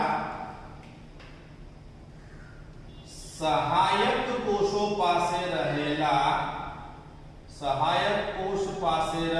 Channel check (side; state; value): both; identical; correlation 1.00